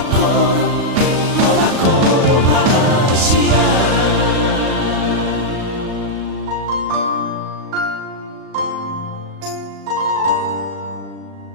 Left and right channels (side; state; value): left; late; 37 ms